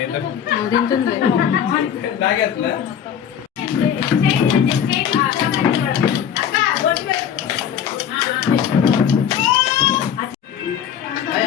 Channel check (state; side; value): quieter; right; 8.8 dB